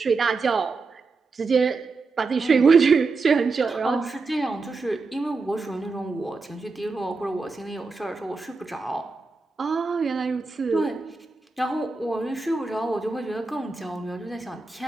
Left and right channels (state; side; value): quieter; left; 4.1 dB